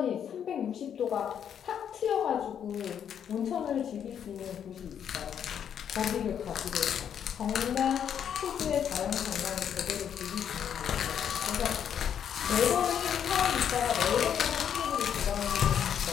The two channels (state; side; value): quieter; right; 8.7 dB